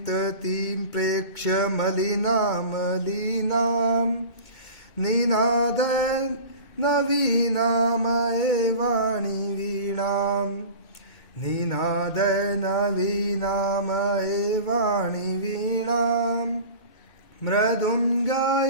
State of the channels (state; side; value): late; right; 2.2 ms